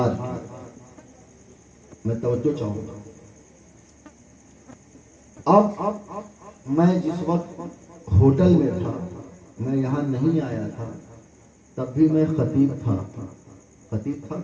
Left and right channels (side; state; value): both; identical; correlation 1.00